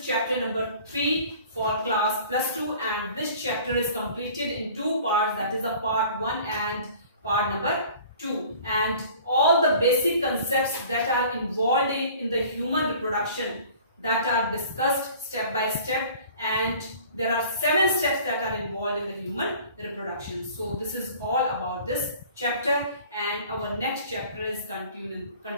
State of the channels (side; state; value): both; inverted; correlation -0.48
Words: chapter number 3 for class +2, and this chapter is completed in 2 parts, that is a part 1 and part number 2, and all the basic concepts that are involved in the human reproduction that are discussed step by step, and there are 7 steps that are involved in the human reproduction. So this is all about this chapter, and our next chapter is continue